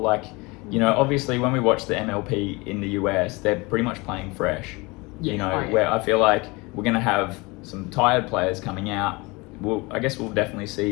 obviously when we watch the MLP in the US, they're pretty much playing fresh. Where I feel like we're going to have some tired players coming out. I guess we'll definitely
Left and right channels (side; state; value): right; quieter; 25.2 dB